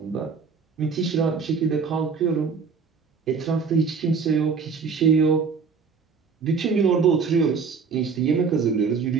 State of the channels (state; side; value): quieter; left; 5.4 dB